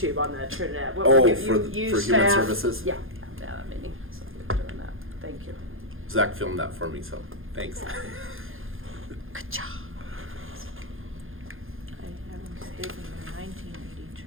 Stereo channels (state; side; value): late; left; 0.60 ms